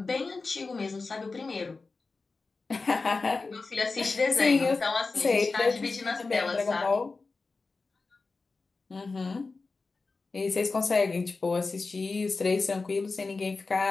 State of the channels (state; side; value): quieter; right; 4.0 dB